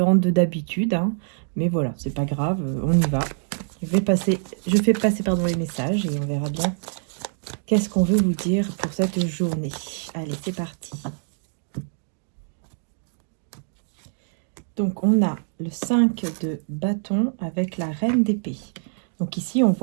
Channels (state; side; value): silent; left; digital silence